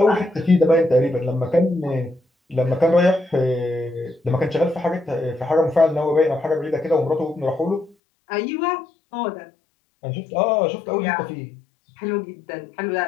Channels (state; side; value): drops out; right; at 8.0 s